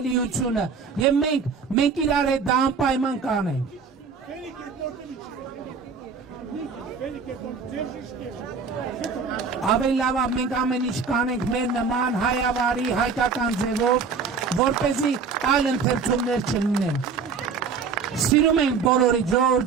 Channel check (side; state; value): left; quieter; 5.4 dB